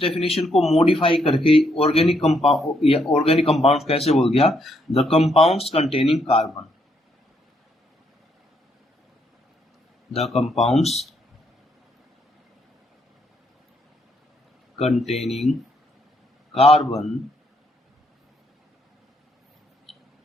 डेफिनेशन को मॉडिफाई करके ऑर्गेनिक कंपाउंड या ऑर्गेनिक कंपाउंड कैसे बोल दिया? The compounds containing carbon. The compounds containing carbon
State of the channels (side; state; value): both; normal; correlation 0.74